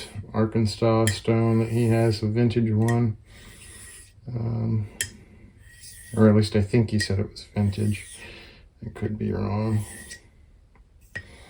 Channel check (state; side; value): identical; both; correlation 1.00